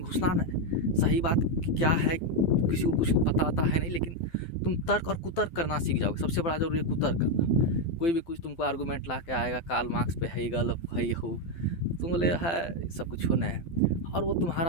घुसना न, सही बात क्या है किसी को कुछ पता आता है नहीं, लेकिन तुम तर्क और कुतर्क करना सीख जाओगे। सबसे बड़ा जरूरी है कुतर्क करना। कोई भी कुछ तुमको आर्गूमेंट ला के आएगा, कार्ल मार्क्स पे है गल है हो, तुम बोले है सब कुछ होना है, और वो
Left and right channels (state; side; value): late; right; 12 ms